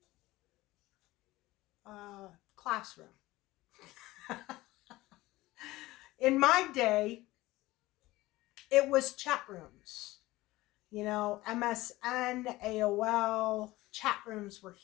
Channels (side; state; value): right; quieter; 18.5 dB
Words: classroom. In my day, it was chat rooms. You know, MSN, AOL, chat rooms were